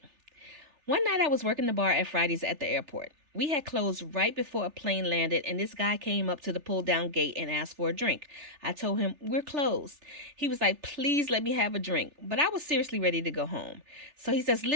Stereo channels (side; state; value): left; late; 3.4 ms